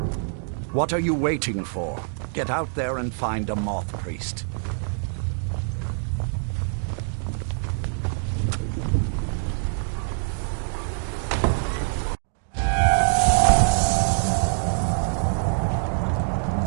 What are you waiting for? Get out there and find a moth priest.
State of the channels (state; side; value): silent; left; digital silence